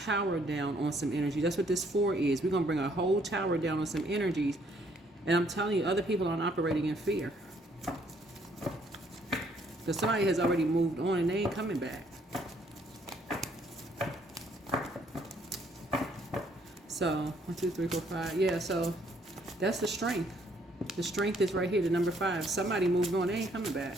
down on some energy. That's what this 4 is. We're going to bring a whole tower down on some energies. And I'm telling you, other people aren't operating in fear. Because somebody has already moved on and they ain't coming back. So 1, 2, 3, 4, 5. Yeah, so that's the strength. The strength is right here, the number 5. Somebody moved on, they ain't coming back.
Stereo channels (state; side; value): normal; both; correlation 0.66